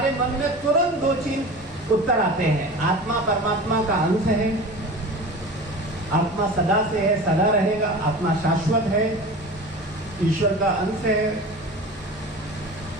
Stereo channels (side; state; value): both; normal; correlation 0.35